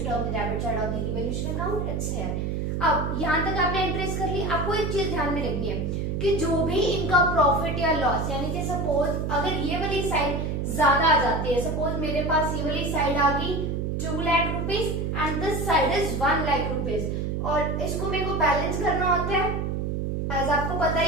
on the debit side of the revaluation account. It's here. अब यहाँ तक आपने एंट्रीज कर ली. आपको एक चीज ध्यान में रखनी है कि जो भी इनका प्रॉफिट या लॉस, यानी कि सपोज अगर ये वाली साइड ज्यादा आ जाती है, सपोज मेरे पास ये वाली साइड आ गई 2 lakh rupees and this side is 1 lakh rupees, और इसको मेरे को बैलेंस करना होता है. एज आपको पता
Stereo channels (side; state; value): right; noise; hum, 1 dB below the sound